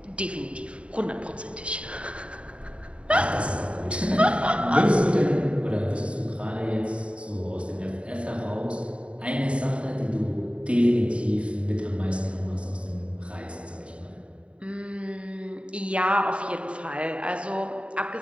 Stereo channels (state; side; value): late; left; 0.059 ms